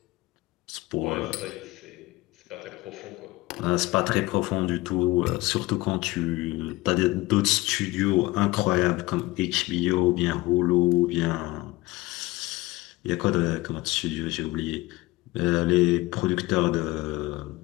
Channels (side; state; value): right; quieter; 20.0 dB